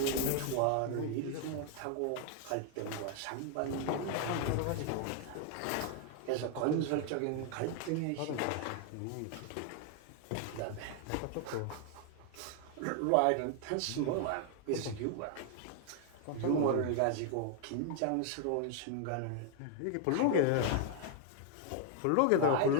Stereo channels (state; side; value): different; both; correlation 0.00